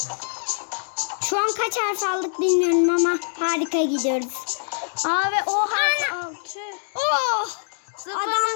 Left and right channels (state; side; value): silent; right; digital silence